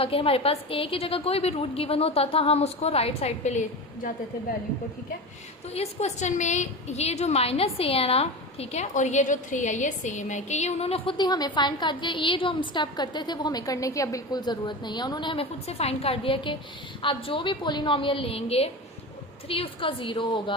कि हमारे पास a की जगह कोई भी रूट गिवन होता था, हम उसको राइट साइड पे ले जाते थे वैल्यू को, ठीक है। तो इस क्वेश्चन में ये जो -a है ना, ठीक है, और ये जो 3 है ये सेम है, कि ये उन्होंने खुद ही हमें फाइंड कर दिया। ये जो हम स्टेप करते थे वो हमें करने की अब बिल्कुल ज़रूरत नहीं है, उन्होंने हमें खुद से फाइंड कर दिया कि आप जो भी पोलिनोमियल लेंगे 3 उसका 0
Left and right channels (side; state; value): both; normal; correlation 0.26